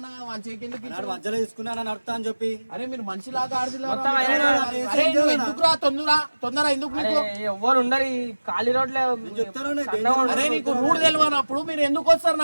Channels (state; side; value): inverted; both; correlation -1.00